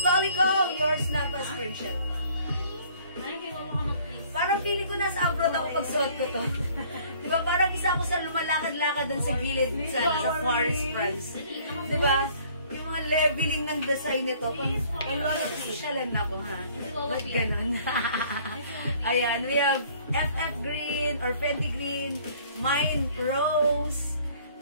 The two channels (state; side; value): inverted; both; correlation -0.56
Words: Yours na pa screenshot. Ay, kinuha ka mag-please. Parang feeling ko nasa abroad ako pag suot ko to. Diba? Parang isa ako sa lumalakad-lakad dun sa gilid sa Paris, France. Diba? Yung mga leveling ng design nito. Pang wala ko sosyalan na ko, ha? Ba't ganun? Ayan, we have FF Green or Fendi Green, Mine Rose,